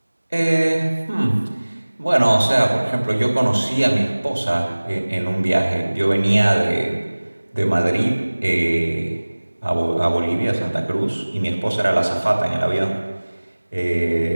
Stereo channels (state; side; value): inverted; both; correlation -1.00